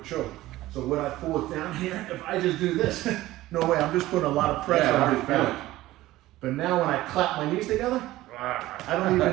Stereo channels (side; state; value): left; quieter; 16.5 dB